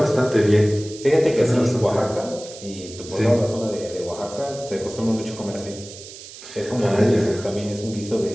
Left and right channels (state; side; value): noise; right; hiss, 15 dB below the sound